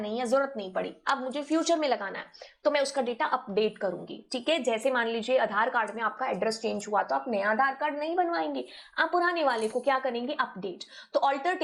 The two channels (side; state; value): both; identical; correlation 1.00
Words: या जरूरत नहीं पड़ी, अब मुझे फ्यूचर में लगाना है, तो मैं उसका डेटा अपडेट करूंगी। ठीक है, जैसे मान लीजिए आधार कार्ड में आपका एड्रेस चेंज हुआ, तो आप नया आधार कार्ड नहीं बनवाएंगे, आप पुराने वाले को क्या करेंगे? अपडेट। तो ऑल्टर